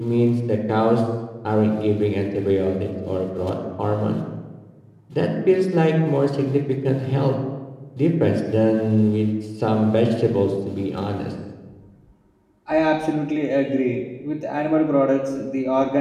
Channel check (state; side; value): identical; both; correlation 1.00